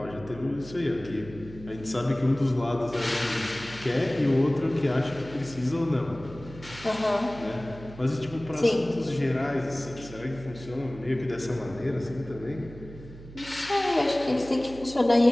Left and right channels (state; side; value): noise; right; hum, 16 dB below the sound